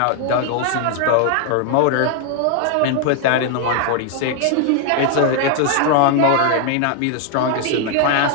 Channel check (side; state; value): both; different; correlation 0.00